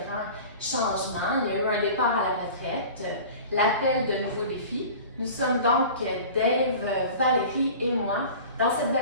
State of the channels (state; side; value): inverted; both; correlation -0.39